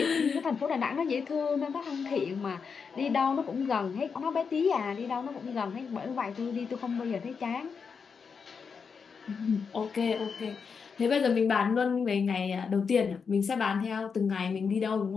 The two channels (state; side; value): quieter; right; 5.8 dB